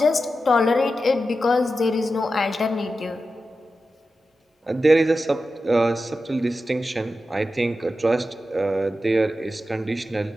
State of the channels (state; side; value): normal; both; correlation 0.91